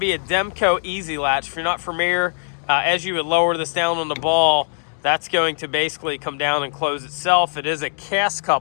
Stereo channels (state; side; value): silent; right; 56 dB below the other